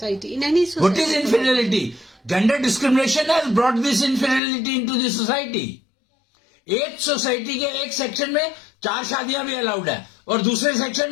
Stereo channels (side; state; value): right; drops out; at 4.4 s